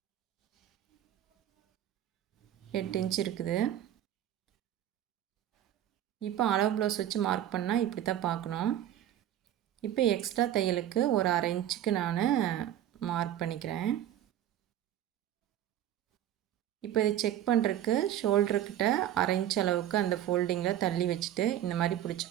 8 இன்ச் இருக்குது. இப்போ அளவு ப்ளவுஸ் வச்சு மார்க் பண்ணால் இப்படி தான் பார்க்கணும். இப்போ எக்ஸ்ட்ரா தையலுக்கு ஒரு 1/2 இன்ச்சுக்கு நான் மார்க் பண்ணிக்கிறேன். இப்போ இதை செக் பண்ணுறதுக்கு ஷோல்டர்கிட்ட 1/2 இன்ச் அளவுக்கு அந்த ஃபோல்டிங்கில் தள்ளி வச்சுட்டு இந்த மாதிரி பிடிச்சி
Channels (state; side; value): quieter; left; 11.5 dB